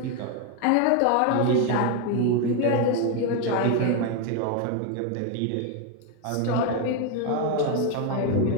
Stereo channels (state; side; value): different; both; correlation 0.01